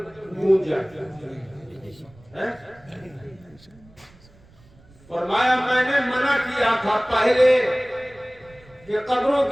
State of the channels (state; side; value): noise; right; rumble, 26 dB below the sound